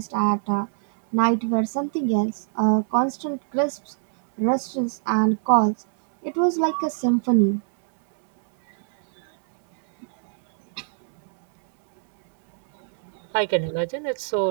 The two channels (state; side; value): silent; left; 63 dB below the other